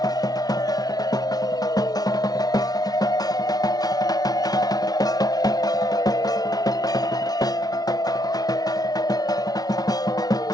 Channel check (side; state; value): right; late; 0.19 ms